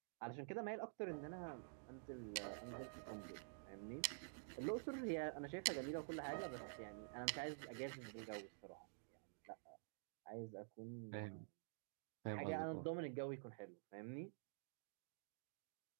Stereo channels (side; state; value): left; silent; digital silence